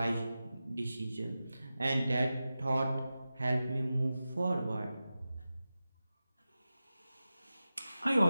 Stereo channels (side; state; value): both; inverted; correlation -0.94